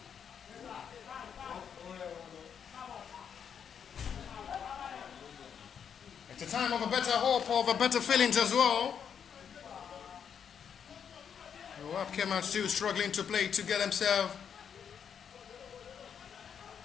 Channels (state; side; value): quieter; right; 7.7 dB